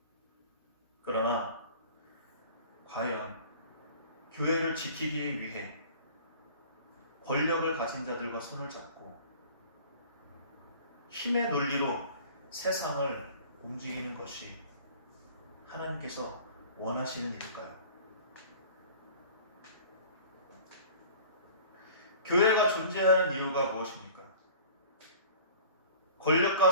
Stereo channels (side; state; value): both; inverted; correlation -0.45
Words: 그러나 과연 교회를 지키기 위해 권력을 가진 자들과 손을 잡고 힘의 논리로 세상을 움직이는 것이 하나님께서 원하시는 일일까요? 교회가 존재하는 이유가 무엇입니까? 권력과